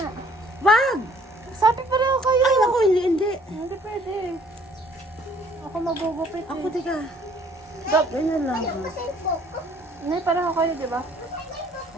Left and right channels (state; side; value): normal; both; correlation 0.59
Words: Wag! Sabi pareho kayo. Ay, naku, hindi, hindi. Hindi pwede. Ako magugupit Ako, eh. tika. Dap. Ganyan lang. Hindi, pareho kayo, di ba?